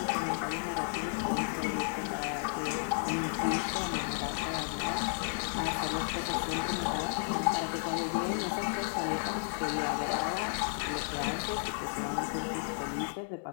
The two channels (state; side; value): silent; right; digital silence